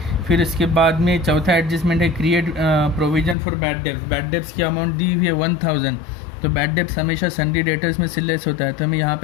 फिर इसके बाद में चौथा एडजस्टमेंट है create provision for bad debts. Bad debts की अमाउंट दी हुई है 1,000। तो बैड डेब्ट्स हमेशा सन्डी डेटर्स में से लेस होता है, तो हमें यहाँ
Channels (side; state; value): right; drops out; at 3.4 s